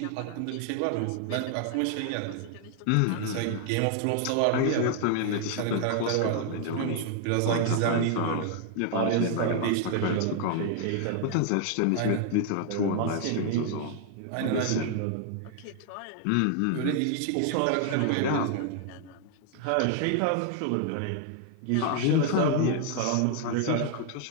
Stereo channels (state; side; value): different; both; correlation 0.00